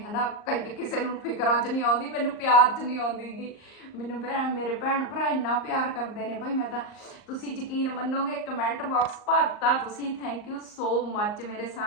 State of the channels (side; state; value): right; late; 38 ms